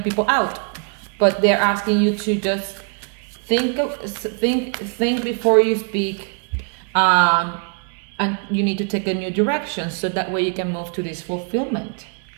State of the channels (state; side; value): quieter; left; 39.2 dB